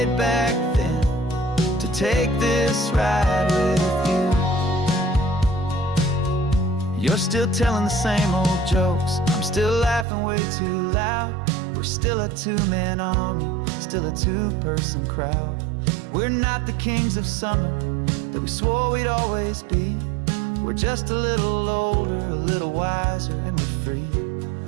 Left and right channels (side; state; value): left; drops out; at 10.1 s